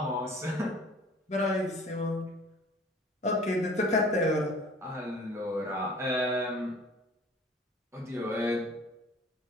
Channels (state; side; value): normal; both; correlation 0.48